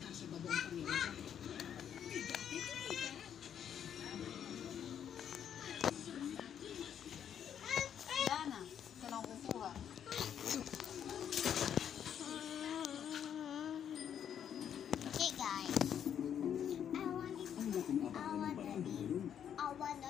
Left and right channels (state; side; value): quieter; right; 9.0 dB